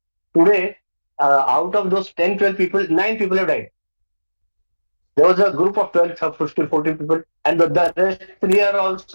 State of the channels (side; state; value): both; inverted; correlation -1.00